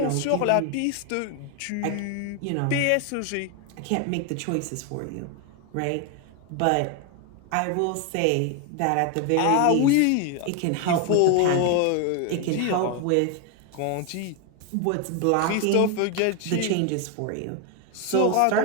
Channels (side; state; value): both; different; correlation 0.01